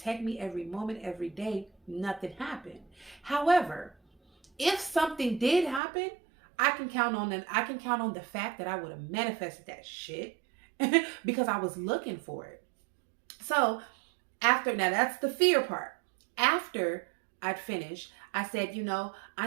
me every moment, every day. Nothing happened. However, if something did happen, I can count on the fact that I would have manifested that shit because I was looking for it. So now that's the fear part. After I'd finished, I said,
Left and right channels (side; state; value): left; drops out; at 5.8 s